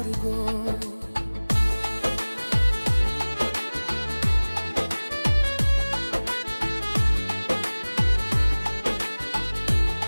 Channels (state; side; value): inverted; both; correlation -1.00